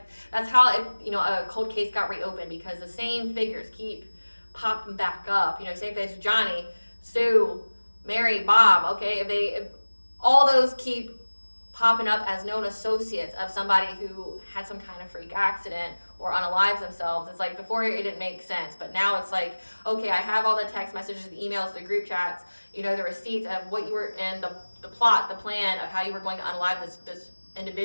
that's how a cold case got reopened, because the same figures keep popping back up. Same thing as Johnny, Sue, Mary, Bob, okay, if all those keep popping up as known associates of somebody who had some kind of freak accident or unalives themselves, it's like before it didn't make sense, but now it's like, okay, I have all the text messages, the emails, the group chats, the receipts of what you were, and the plot, the plan of how you were going to unalive this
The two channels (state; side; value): inverted; both; correlation -1.00